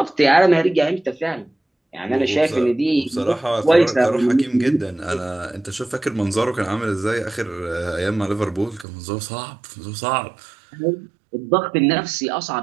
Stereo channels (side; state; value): left; drops out; at 8.8 s